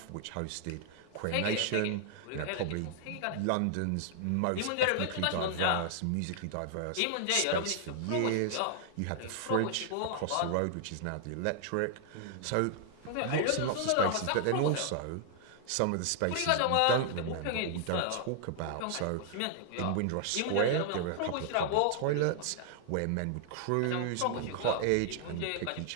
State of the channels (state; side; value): different; both; correlation -0.01